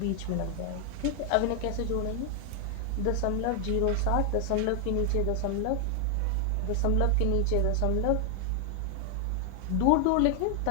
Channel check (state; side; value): different; both; correlation 0.00